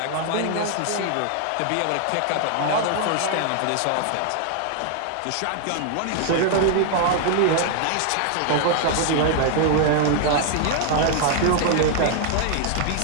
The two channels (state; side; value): different; both; correlation 0.00